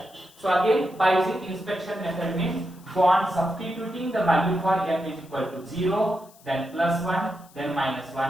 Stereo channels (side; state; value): left; noise; hiss, 26 dB below the sound